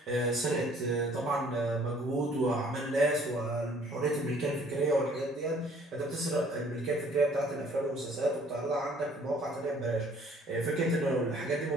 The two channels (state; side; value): normal; both; correlation 0.58